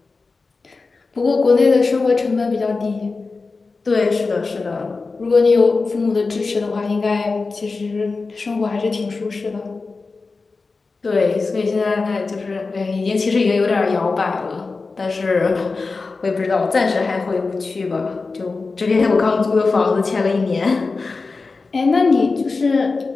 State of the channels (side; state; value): right; quieter; 4.0 dB